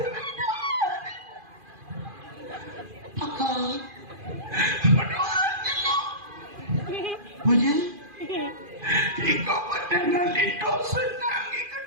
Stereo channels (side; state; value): left; late; 2.4 ms